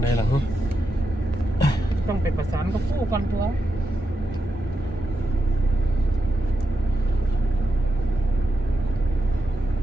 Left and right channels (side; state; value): both; normal; correlation 0.86